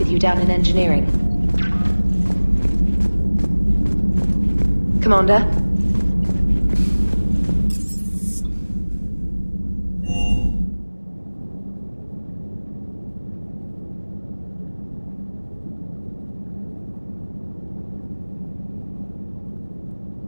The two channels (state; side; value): inverted; both; correlation -1.00